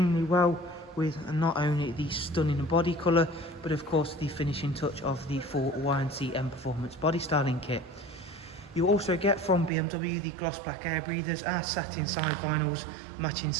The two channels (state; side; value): drops out; left; at 9.7 s